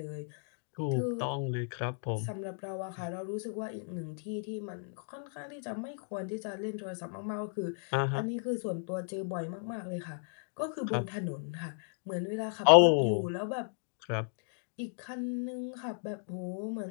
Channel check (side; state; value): right; silent; digital silence